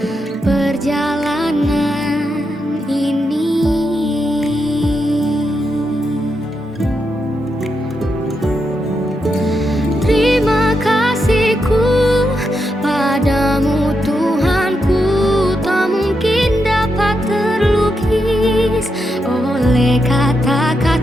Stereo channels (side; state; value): both; normal; correlation 0.84